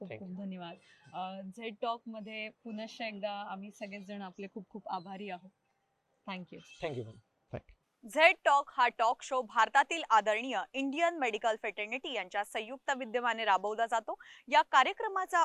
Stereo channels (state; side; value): identical; both; correlation 1.00